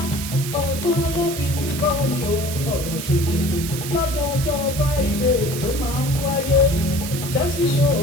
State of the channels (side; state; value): right; noise; hiss, 8 dB below the sound